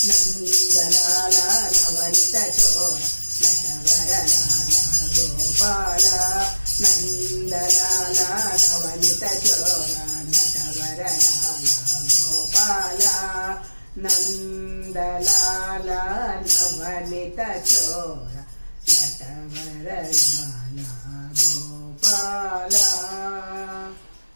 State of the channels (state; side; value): inverted; both; correlation -1.00